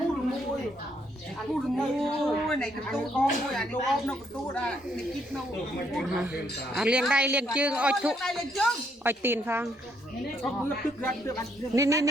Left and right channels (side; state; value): both; normal; correlation 0.72